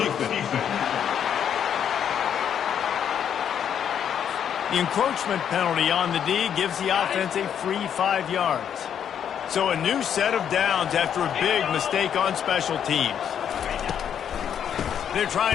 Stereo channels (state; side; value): quieter; right; 8.7 dB